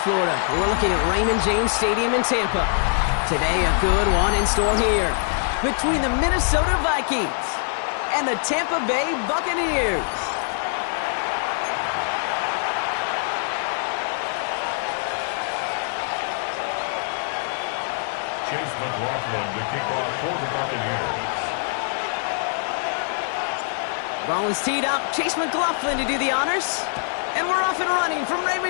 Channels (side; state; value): right; silent; 63 dB below the other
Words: we're looking at Raymond James Stadium in Tampa. Today, a good one in store here between the Minnesota Vikings and the Tampa Bay Buccaneers. Chase McLaughlin to kick off for the Buccaneers. Ball is teed up. Chase McLaughlin to do the honors. And we're off and running from